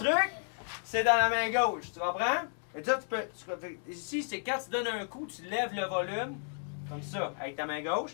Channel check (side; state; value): right; silent; 56 dB below the other